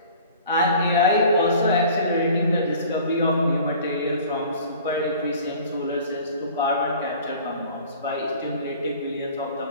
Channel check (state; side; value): inverted; both; correlation -0.46